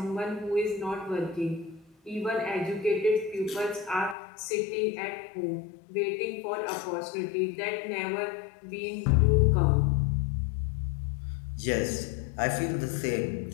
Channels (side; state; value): right; drops out; at 4.2 s